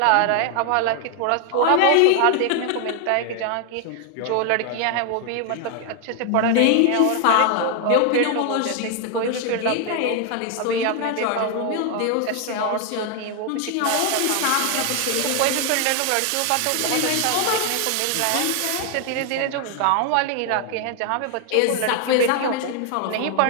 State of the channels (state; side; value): different; both; correlation 0.00